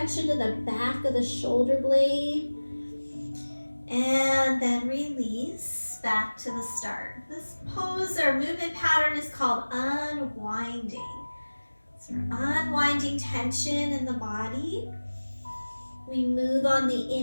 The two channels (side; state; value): both; inverted; correlation -1.00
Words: into the back of the shoulder blade. And then release back to the start. This pose or movement pattern is called unwinding. So we're unwinding tension in the body. We move on the